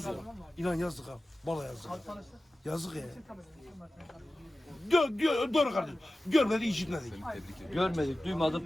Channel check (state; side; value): normal; both; correlation 0.95